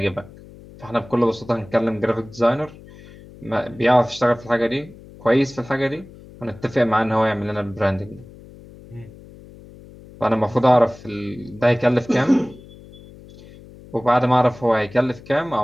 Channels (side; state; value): left; noise; hum, 20 dB below the sound